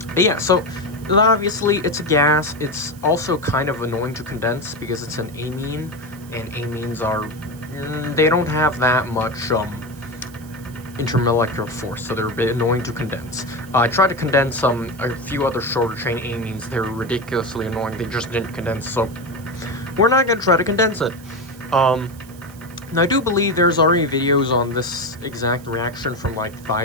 Yeah, so obviously it's a gas. It's also kind of annoying to condense because it's an amine, and amines are they don't have that much intermolecular force, so they're a bit annoying to condense. I tried to condense a few other shorter chain amines. They're ridiculously annoying. They just didn't condense, so we're not going to try to condense it. Now, I do believe there's already videos on this exact reaction from like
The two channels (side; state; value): right; noise; hiss, 23 dB below the sound